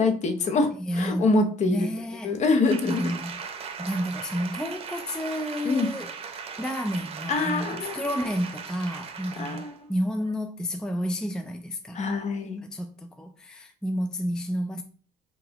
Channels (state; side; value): normal; both; correlation 0.65